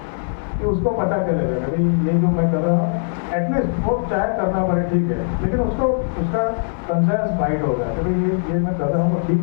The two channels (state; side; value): silent; right; digital silence